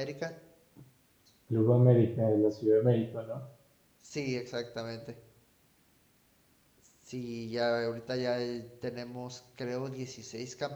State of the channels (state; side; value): identical; both; correlation 1.00